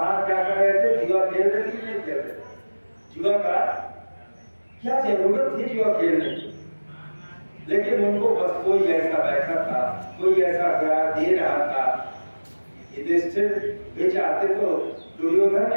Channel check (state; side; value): inverted; both; correlation -1.00